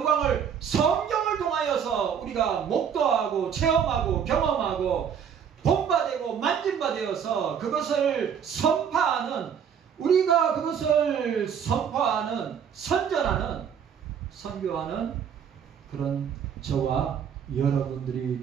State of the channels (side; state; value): left; quieter; 7.8 dB